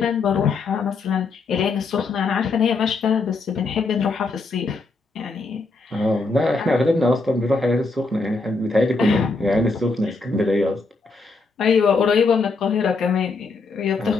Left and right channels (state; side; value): quieter; right; 3.9 dB